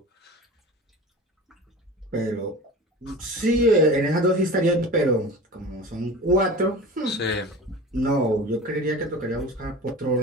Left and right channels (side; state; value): both; normal; correlation 0.35